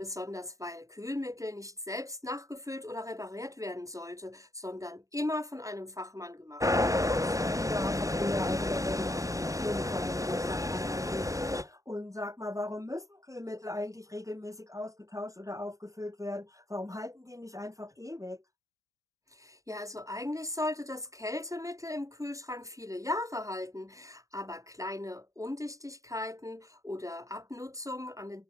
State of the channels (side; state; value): left; late; 0.16 ms